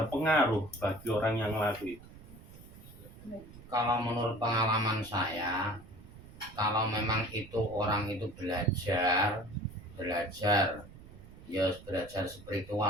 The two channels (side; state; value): right; noise; rumble, 18 dB below the sound